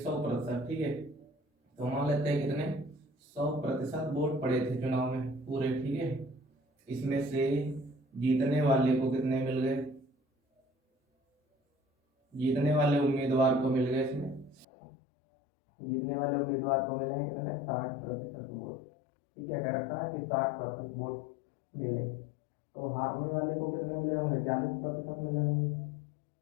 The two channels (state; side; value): drops out; right; at 14.7 s